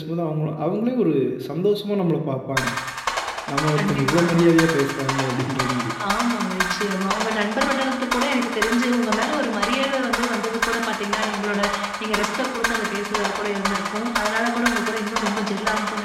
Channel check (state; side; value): identical; both; correlation 1.00